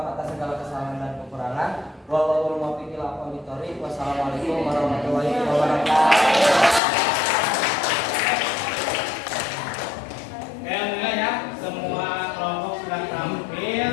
atas segala kesalahan dan kekurangan. Wallahul muwaffiq ila aqwamit thoriq. Wassalamualaikum warahmatullahi wabarakatuh. Alhamdulillah ya, semua kelompok sudah tampil.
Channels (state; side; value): drops out; right; at 6.8 s